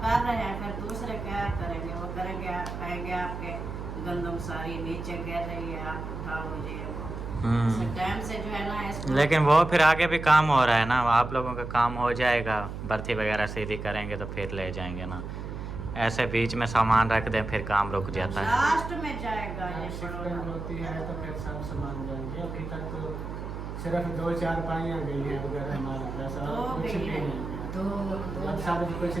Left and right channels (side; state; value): right; noise; hum, 7 dB below the sound